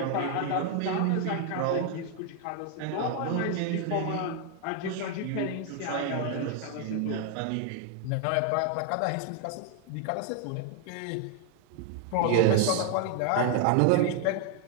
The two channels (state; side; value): different; both; correlation 0.00